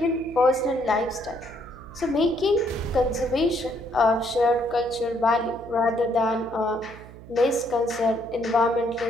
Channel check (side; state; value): right; noise; hum, 17 dB below the sound